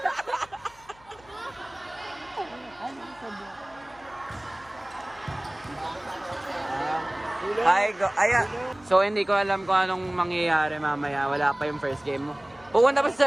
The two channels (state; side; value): noise; left; hum, 27 dB below the sound